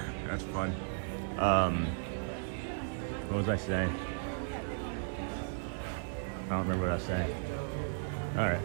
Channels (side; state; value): left; silent; 54 dB below the other